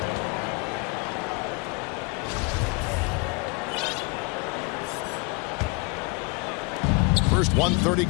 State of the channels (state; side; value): quieter; right; 27.7 dB